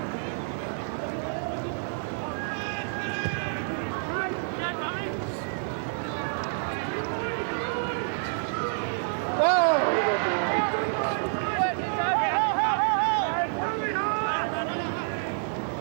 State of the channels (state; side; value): silent; left; digital silence